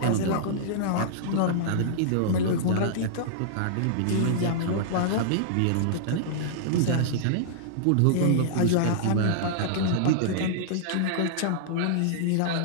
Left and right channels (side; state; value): both; different; correlation -0.02